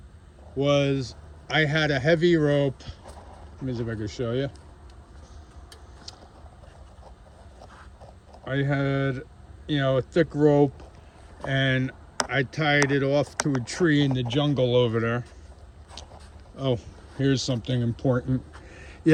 was I had a heavy rope. Let me see if I can show you. I had, a thick rope, and I tied it off to a tree in the jungle over there. Oh, here's something important.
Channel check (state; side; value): identical; both; correlation 1.00